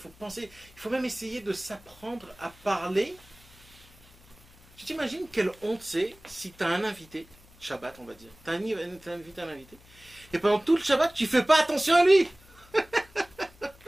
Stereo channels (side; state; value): left; noise; hum, 26 dB below the sound